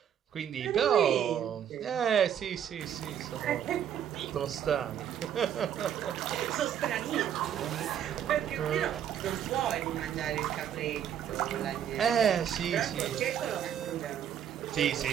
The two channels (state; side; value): quieter; left; 9.4 dB